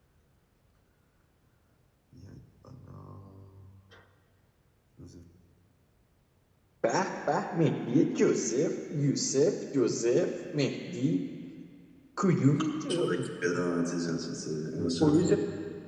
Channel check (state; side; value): identical; both; correlation 1.00